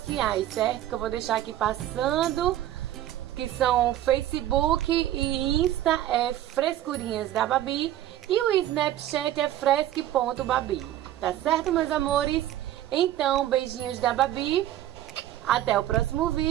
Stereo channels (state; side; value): quieter; left; 12.9 dB